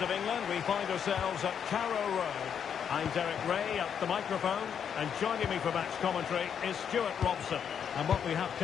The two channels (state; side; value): quieter; right; 7.9 dB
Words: of England. We find ourselves at Carrow Road. I'm Derek Ray at the microphone, and joining me for match commentary is Stuart Robson. And what we have